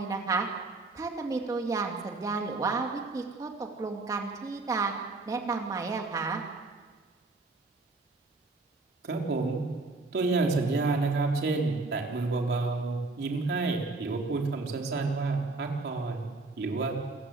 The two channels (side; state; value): left; quieter; 3.4 dB